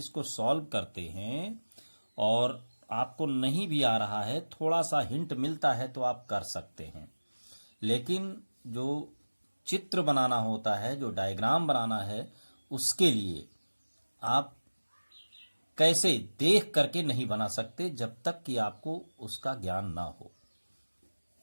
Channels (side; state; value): both; inverted; correlation -1.00